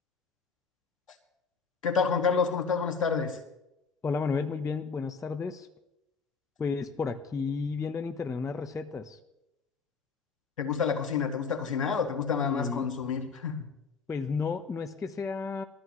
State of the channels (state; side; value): quieter; right; 5.2 dB